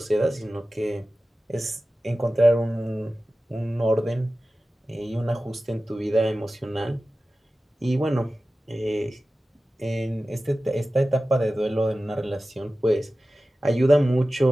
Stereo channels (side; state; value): both; normal; correlation 0.95